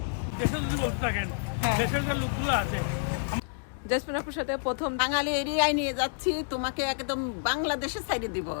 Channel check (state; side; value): silent; right; 59 dB below the other